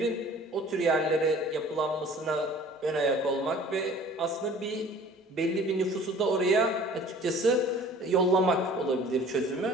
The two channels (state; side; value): normal; both; correlation 0.48